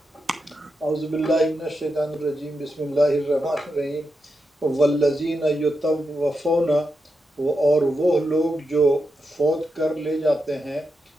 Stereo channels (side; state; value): both; normal; correlation 0.87